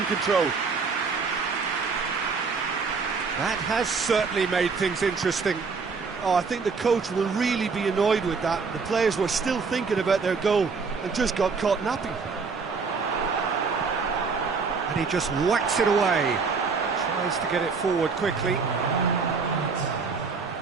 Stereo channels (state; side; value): quieter; left; 5.0 dB